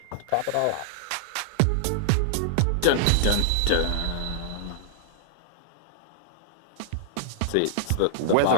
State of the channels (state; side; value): different; both; correlation -0.01